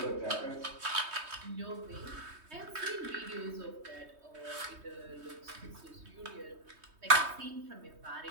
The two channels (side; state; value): left; late; 3.2 ms